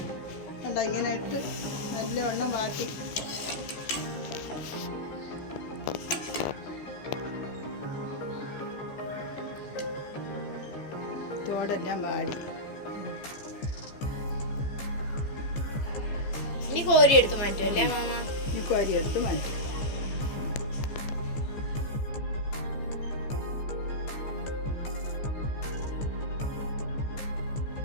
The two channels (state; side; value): late; right; 15 ms